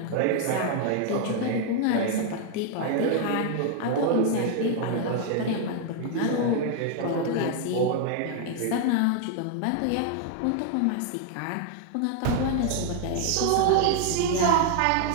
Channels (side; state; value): both; different; correlation 0.00